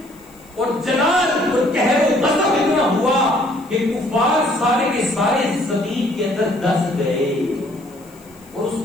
اور جلال اور قہر و غضب اتنا ہوا کہ کفار سارے کے سارے زمین کے اندر دس گئے اور اس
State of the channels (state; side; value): noise; left; hiss, 27 dB below the sound